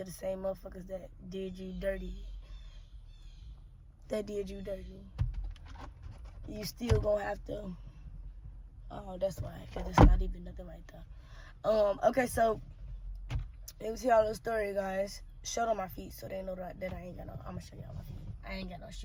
the same motherfuckers that did you dirty. You still gonna have to. Oh, that's why, because it's not even nothing like that. Okay, so let me tell y'all the story, guys. Shirt on my feet so they know that I ain't got no. I'm gonna show y'all my feet. I ain't got no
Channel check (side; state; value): both; identical; correlation 1.00